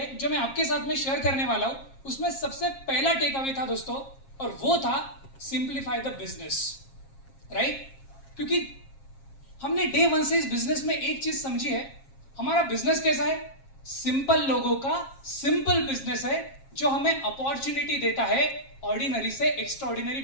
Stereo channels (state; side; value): late; right; 7.4 ms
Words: जो मैं आपके साथ में शेयर करने वाला हूं। उसमें सबसे पहला टेकअवे था दोस्तों, और वो था सिंप्लीफाई द बिजनेस, राइट। क्योंकि हमने डे वन से इस बिजनेस में एक चीज समझी है, हमारा बिजनेस कैसा है, सिंपल लोगों का सिंपल बिजनेस है जो हमें अपॉर्चुनिटी देता है ऑर्डिनरी से एक्स्ट्राऑर्डिनरी